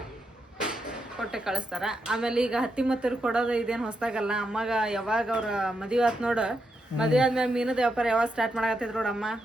ಕೊಟ್ಟೆ ಕಳಿಸ್ತಾರೆ. ಆಮೇಲೆ ಈಗ ಹತ್ತಿ ಮತ್ತರು ಕೊಡೋದು ಇದೇನು ಹೊಸ್ದಾಗಲ್ಲ. ಅಮ್ಮಗೆ ಯಾವಾಗ ಅವ್ರ ಮದುವೆ ಆಯ್ತು ನೋಡು, ಮದುವೆ ಆದ್ಮೇಲೆ ಮೀನದ ವ್ಯಾಪಾರ ಯಾವಾಗ ಸ್ಟಾರ್ಟ್ ಮಾಡಕತ್ತಿದ್ರು ನೋಡಮ್ಮ,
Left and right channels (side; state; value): both; normal; correlation 0.83